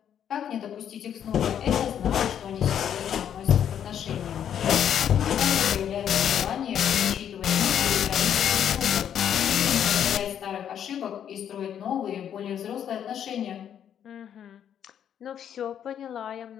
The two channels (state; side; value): quieter; right; 9.3 dB